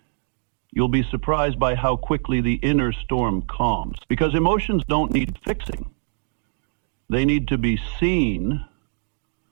You'll be surprised by how quickly the inner storm calms. Because emotions don't need fixing. They need to be seen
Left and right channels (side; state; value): left; silent; digital silence